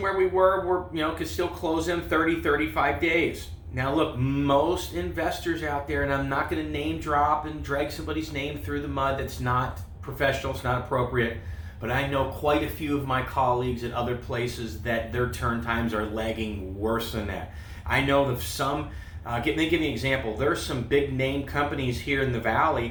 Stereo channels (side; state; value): both; identical; correlation 1.00